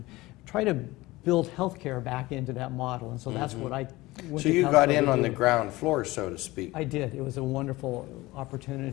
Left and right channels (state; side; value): quieter; right; 19.7 dB